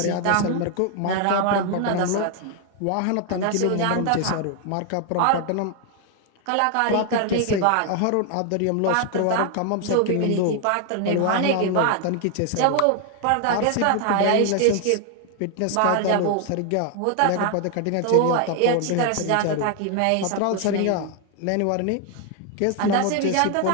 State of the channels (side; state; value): both; different; correlation 0.00